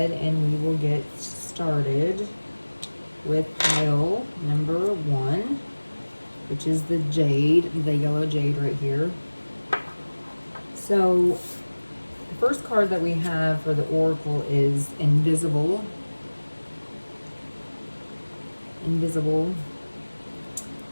and we will get started with pile number 1, which is the jade, the yellow jade right here. So the first card that we have for the oracle is invisible. Invisible.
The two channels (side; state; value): both; inverted; correlation -1.00